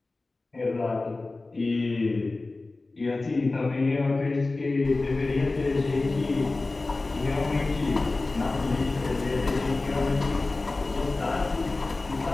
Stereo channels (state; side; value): quieter; right; 3.3 dB